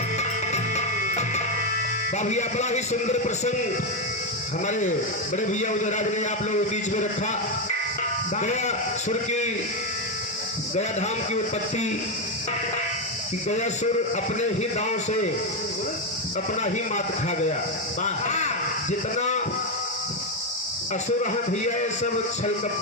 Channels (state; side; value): normal; both; correlation 0.07